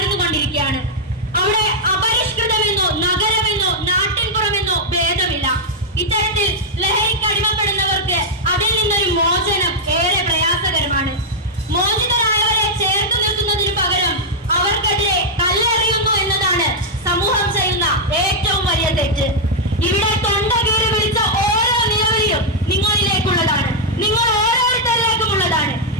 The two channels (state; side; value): normal; both; correlation -0.04